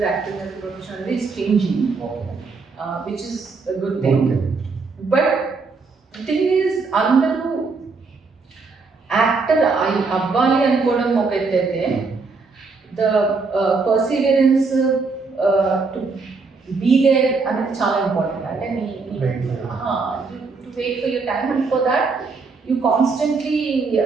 acting as a profession. It's changing, which is a good thing. But the thing is, అందరూ actor అవ్వాలి అనుకోవడం ఒక ఎత్తు అయితే, the perseverance to be there అనేది చాలా ఇంపార్టెంట్. అంటే to wait for your time, and for that you constantly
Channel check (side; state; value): left; quieter; 4.4 dB